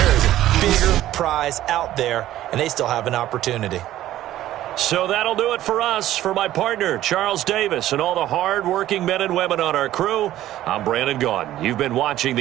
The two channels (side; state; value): left; quieter; 13.7 dB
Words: is a bigger prize out there, and they still have an opportunity. So that'll do it for us. For my partner, Charles Davis, and all the hard-working men and women on our crew, I'm Brandon Gaudin. You've been watching